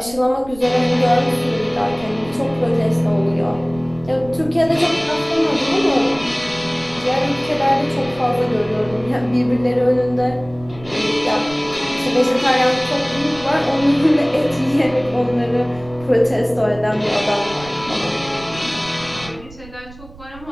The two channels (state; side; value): noise; right; rumble, 19 dB below the sound